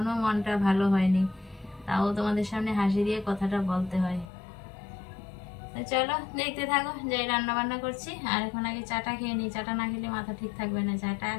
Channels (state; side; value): drops out; right; at 4.3 s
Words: মনটা ভালো হয়নি, তাও তোমাদের সামনে হাসি দিয়ে কথাটা বলতে হয়। তো চলো দেখতে থাকো, যাই রান্না বান্না করছি। আর এখন আগে চাটা খেয়ে নিই, চাটা না খেলে মাথা ঠিক থাকবে না। চাটা